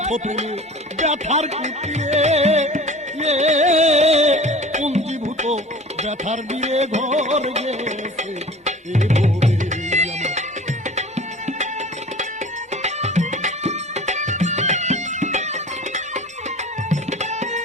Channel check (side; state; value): both; normal; correlation 0.41